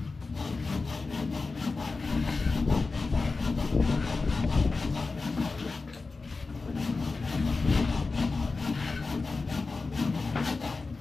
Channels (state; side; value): quieter; right; 3.9 dB